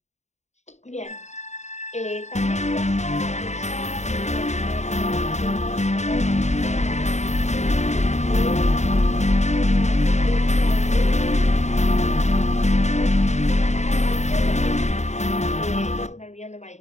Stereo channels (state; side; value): late; right; 0.33 ms